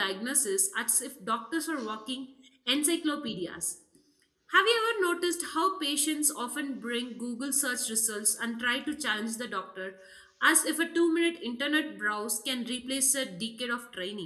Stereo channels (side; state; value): both; identical; correlation 1.00